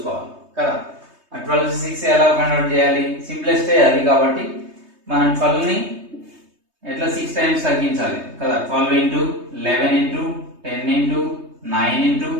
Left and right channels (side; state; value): left; late; 3.2 ms